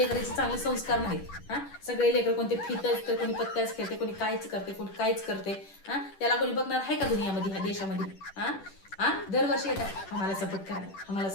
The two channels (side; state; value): right; late; 10 ms